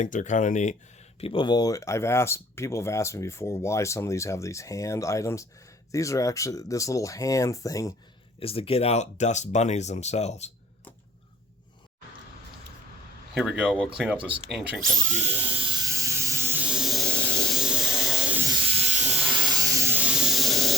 they're kind of neat. People have asked me before why some of these have these hand items. These are actually, this little hand thing is to get out dust bunnies themselves. Here we go, we'll clean up this ancient computer.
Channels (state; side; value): normal; both; correlation 0.47